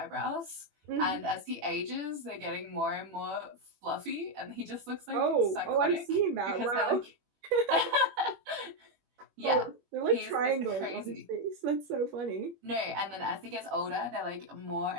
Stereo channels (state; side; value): late; left; 21 ms